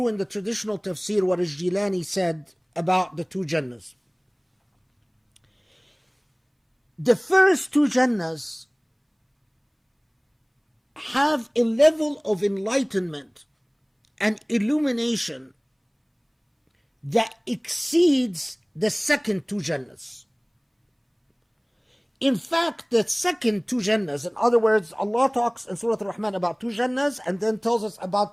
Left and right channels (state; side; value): identical; both; correlation 1.00